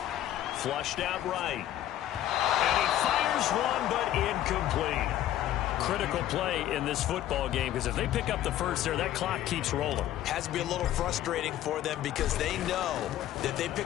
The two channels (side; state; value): right; quieter; 12.6 dB